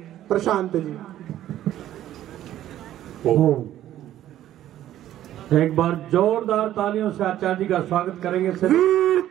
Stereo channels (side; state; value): left; quieter; 12.6 dB